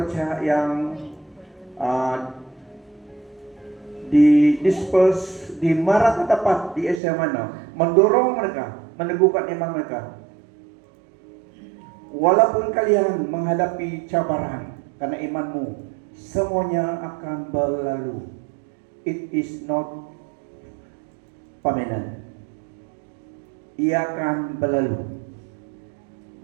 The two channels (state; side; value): drops out; left; at 7.0 s